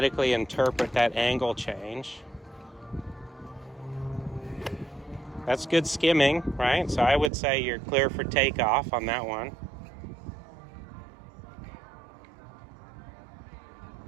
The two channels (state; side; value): drops out; left; at 7.3 s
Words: interpret that angle change. That's good skimming, right? So I would say you're clear for takeoff on that one.